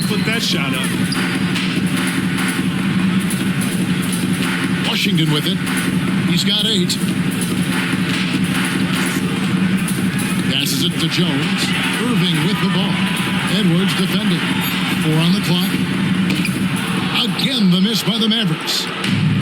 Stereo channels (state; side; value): identical; both; correlation 1.00